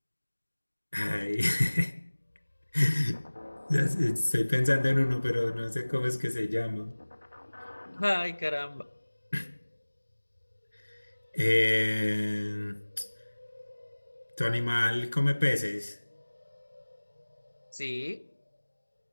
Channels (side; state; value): both; inverted; correlation -1.00